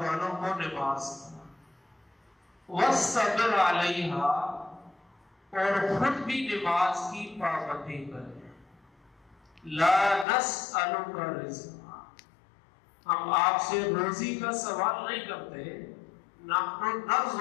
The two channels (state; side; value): drops out; right; at 10.2 s